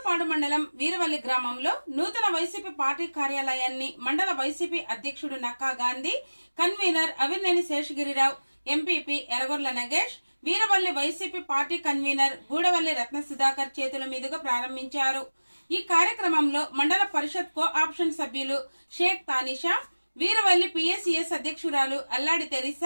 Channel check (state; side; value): inverted; both; correlation -1.00